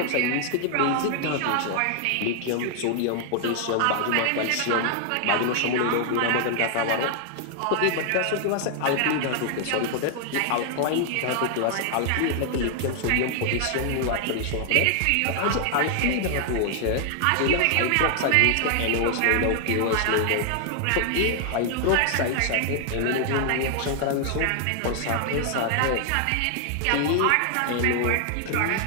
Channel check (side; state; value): both; different; correlation 0.00